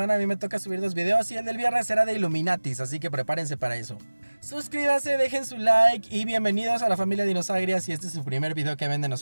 a mí me toca subir 2 videos y el del viernes será de Illuminatis, así que prepárense para eso. Suscríbanse, dejen su like y bienvenidos a la familia Dinosagria si este es su primer video que ven de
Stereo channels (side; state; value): both; inverted; correlation -1.00